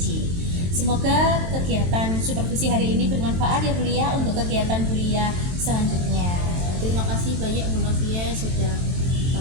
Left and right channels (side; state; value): left; late; 23 ms